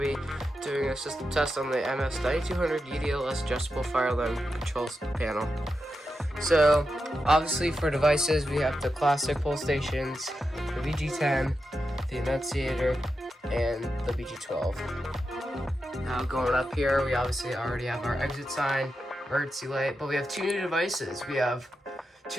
to be doing a system test on the MS9200 UDLS adjustable fire alarm control panel. So, obviously for devices we have the classic pull stations, the VG10, the annunciator, and the VG12. Now going up here, we obviously already have our exit sign, emergency light, but we have two new devices. We have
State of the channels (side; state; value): both; normal; correlation 0.88